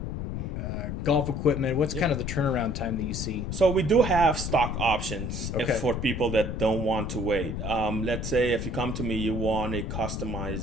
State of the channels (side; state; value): left; noise; rumble, 4 dB below the sound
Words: golf equipment? What's kind of the turnaround time that you see? So we do have stock options Okay. for people that don't want to wait. Let's say if you come to me, you want a